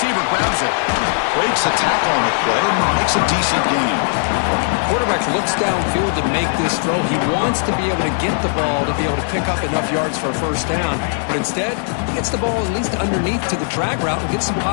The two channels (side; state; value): right; silent; digital silence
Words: grabs it, breaks a tackle on the play, and makes a decent gain. The quarterback looks downfield to make this throw. He wants to be able to get the ball to be able to pick up enough yards for a 1st down. But instead, he gets the ball at least underneath to the drag route and gets some